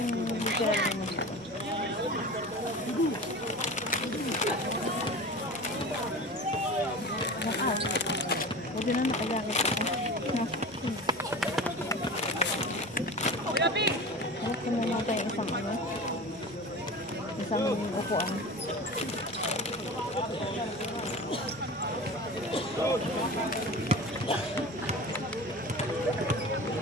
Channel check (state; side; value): noise; left; hum, 29 dB below the sound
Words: tira mo. Diyan na nakajakit ako. No. Harap ko muna tayo isang ano. Isang upuan.